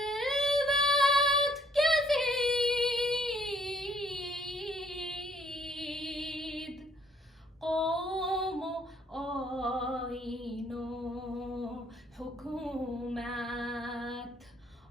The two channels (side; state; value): both; normal; correlation 0.64